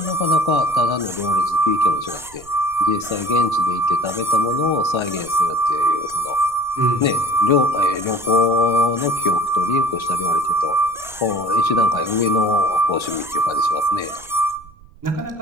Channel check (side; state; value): right; noise; rumble, 23 dB below the sound